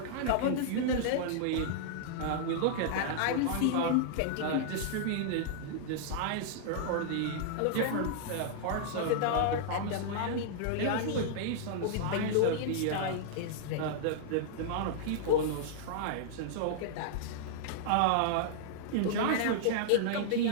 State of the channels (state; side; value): different; both; correlation -0.02